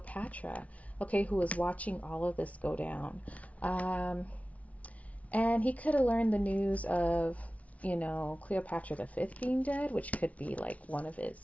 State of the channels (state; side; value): late; right; 0.067 ms